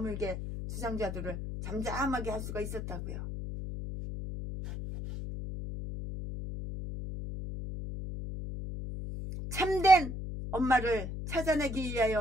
주장자들을 잠잠하게 할 수가 있었다고요. 참된 엄마를 찾아내기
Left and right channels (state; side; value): noise; left; hum, 6 dB below the sound